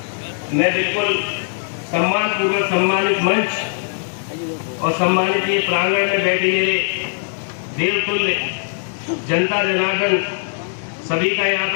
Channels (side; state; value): right; silent; digital silence